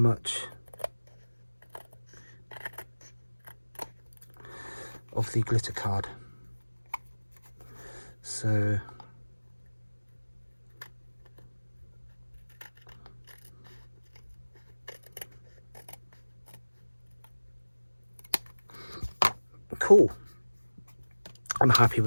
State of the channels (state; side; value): inverted; both; correlation -1.00